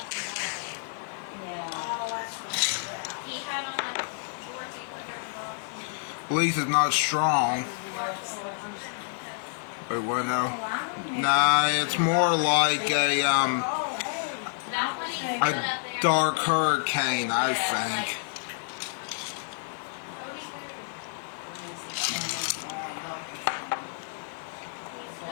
At least it's not strong. Wait, what now? Nah, it's more like a dark hurricane, I think.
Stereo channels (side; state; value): right; silent; 59 dB below the other